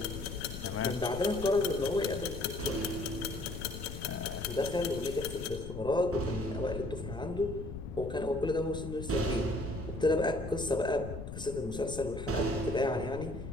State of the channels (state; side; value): noise; left; rumble, 8 dB below the sound